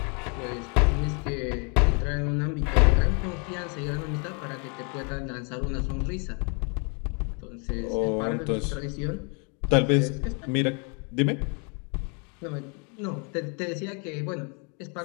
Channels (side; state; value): right; quieter; 36.2 dB